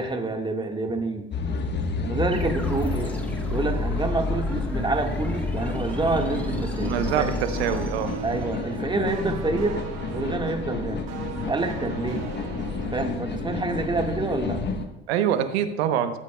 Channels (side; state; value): both; normal; correlation 0.49